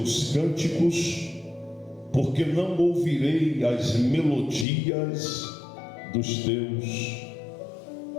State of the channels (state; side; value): drops out; right; at 4.7 s